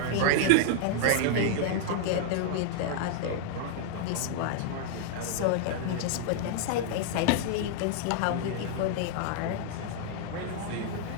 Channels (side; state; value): both; different; correlation -0.01